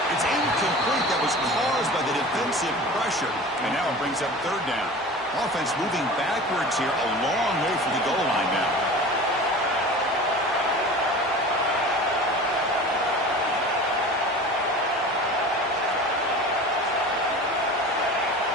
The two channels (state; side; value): normal; both; correlation 0.37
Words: It's incomplete. That was caused by the defensive pressure. And now it brings up third down. Offense moving backwards here, a long way from the goal line now.